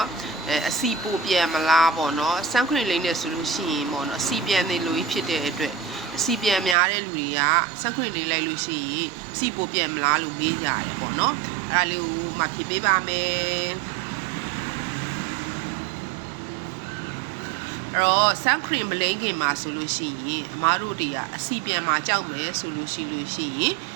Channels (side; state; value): left; drops out; at 6.8 s